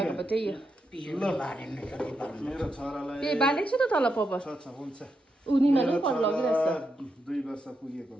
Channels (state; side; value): normal; both; correlation 0.84